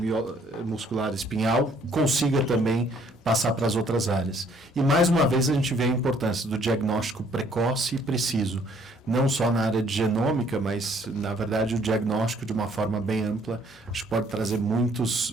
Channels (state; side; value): normal; both; correlation 0.62